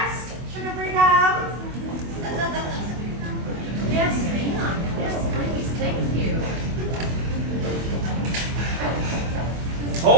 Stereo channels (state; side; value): late; left; 24 ms